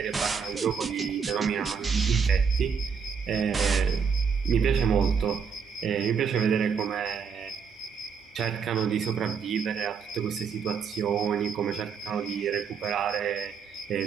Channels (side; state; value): left; quieter; 6.3 dB